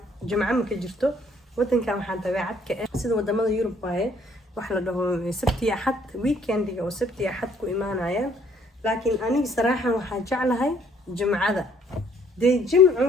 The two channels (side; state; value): both; normal; correlation 0.62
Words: jimco ma ka jirto wadankan waxaan dabeecad ka ah sida wadamada Yurub waaye wax la dhaho sabti axad weekendiga oo sabti axad ku imaanayaan laakiin aniga saraaxan waxaan jeclahay jimcada de jimcu